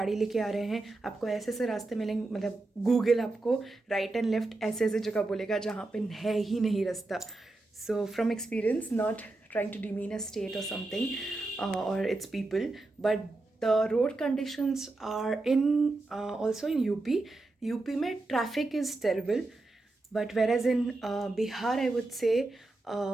लेके आ रहे हैं, आपको ऐसे ऐसे रास्ते मिलेंगे, मतलब गूगल आपको राइट एंड लेफ्ट ऐसे ऐसे जगह बोलेगा जहाँ पे है ही नहीं रास्ता। So from experience, not trying to demean a state or something or its people, but the road conditions are in also in UP में traffic is terrible, but whereas in Bihar I would say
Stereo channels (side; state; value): left; quieter; 3.1 dB